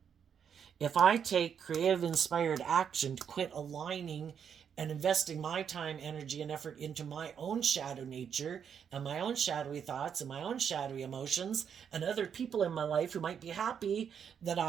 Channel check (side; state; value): left; quieter; 7.7 dB